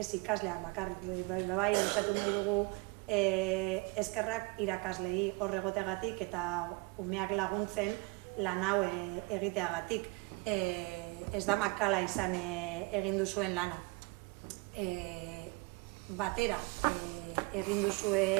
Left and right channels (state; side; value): quieter; left; 26.9 dB